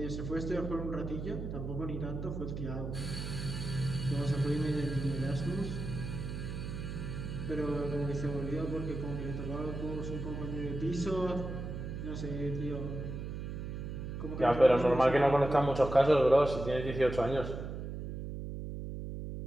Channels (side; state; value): right; noise; hum, 6 dB below the sound